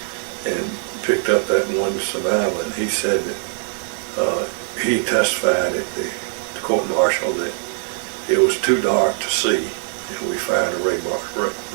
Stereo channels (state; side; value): silent; left; digital silence